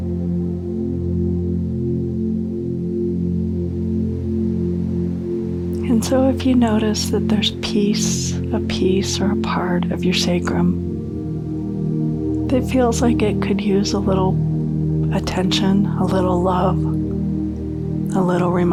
And so if you notice that there's a piece or a part of your sacrum that feels like it could use a little attention, a little love, a little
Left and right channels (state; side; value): identical; both; correlation 1.00